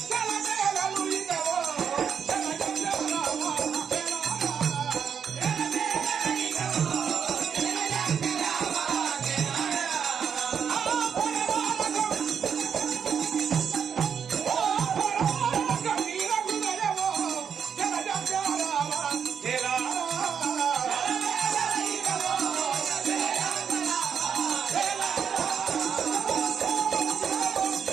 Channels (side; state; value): left; quieter; 7.3 dB